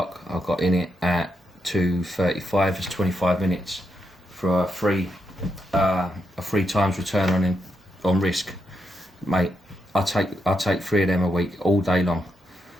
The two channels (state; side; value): normal; both; correlation 0.83